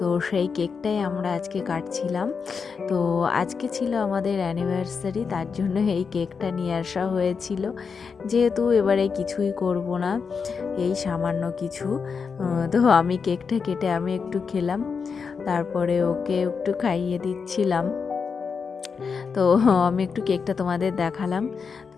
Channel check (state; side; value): quieter; right; 5.6 dB